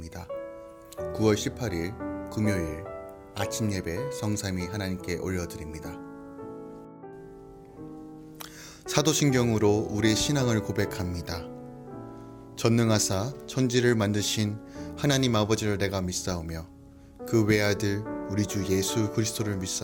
9월 18일 금요일 아침 예배 성삼위 하나님께 올려드립니다. 사도신경으로 우리의 신앙을 고백합니다. 전능하사 천지를 만드신 하나님 아버지를 내가 믿사오며 그 외아들 우리 주 예수 그리스도를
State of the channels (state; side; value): identical; both; correlation 1.00